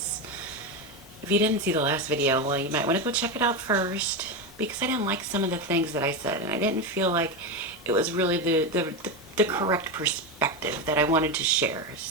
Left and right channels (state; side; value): normal; both; correlation 0.14